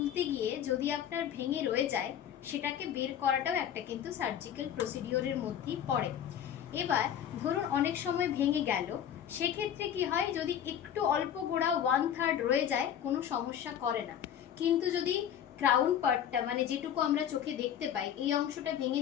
গিয়ে যদি আপনার ভেঙে রয়ে যায়, সেটাকে বের করাটাও একটা কিন্তু সার্জিক্যাল প্রসিডিওরের মধ্যেই পড়ে। এবার ধরুন অনেক সময় ভেঙে গেল, সেক্ষেত্রে কি হয়, যদি একটু অল্প গোড়া 1/3 রয়ে যায় কোনো সমস্যা করে না। কিন্তু যদি ক্রাউন পার্টটা মানে যেটুকু আমরা চোখে দেখতে পাই এই অংশটা ভেঙে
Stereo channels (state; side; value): quieter; right; 9.6 dB